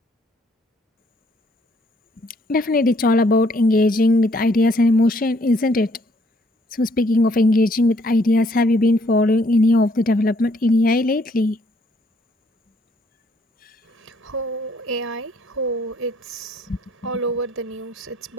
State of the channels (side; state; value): both; normal; correlation 0.66